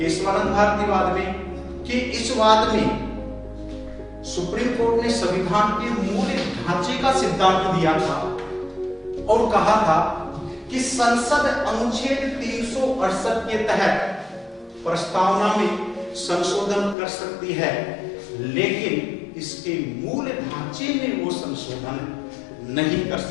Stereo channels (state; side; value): drops out; right; at 16.9 s